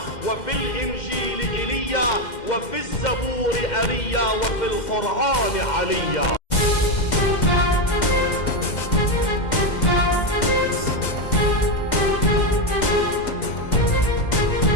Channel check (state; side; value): late; right; 2.1 ms